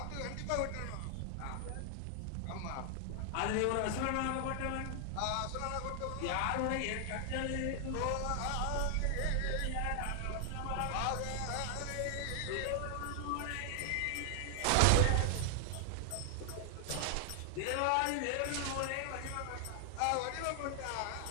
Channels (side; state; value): both; different; correlation 0.00